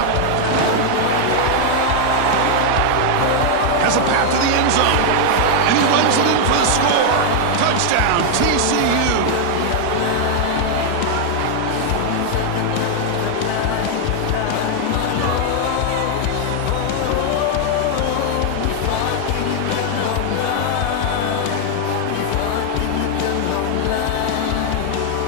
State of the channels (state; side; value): different; both; correlation 0.00